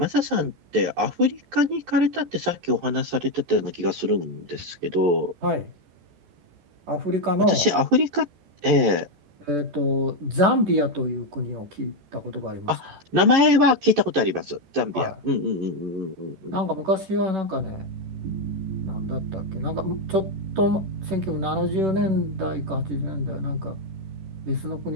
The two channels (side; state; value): left; late; 14 ms